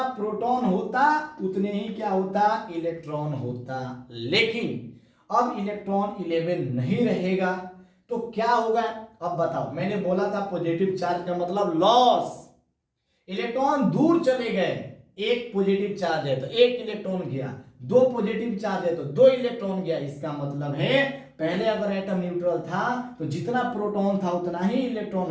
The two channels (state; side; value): identical; both; correlation 1.00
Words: प्रोटॉन होता उतने ही क्या होता, इलेक्ट्रॉन होता, लेकिन अब इलेक्ट्रॉन 11 नहीं रहेगा तो क्या होगा, अब बताओ। मैंने बोला था पॉजिटिव चार्ज का मतलब लॉस, इलेक्ट्रॉन दूर चले गए, एक पॉजिटिव चार्ज है तो एक इलेक्ट्रॉन गया, दो पॉजिटिव चार्ज है तो दो इलेक्ट्रॉन गया। इसका मतलब है पहले अगर एटम न्यूट्रल था तो जितना प्रोटॉन था उतना ही इलेक्ट्रॉन